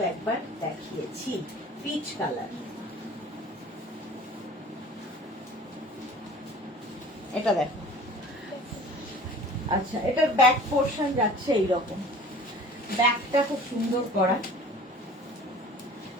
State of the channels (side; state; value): both; normal; correlation 0.45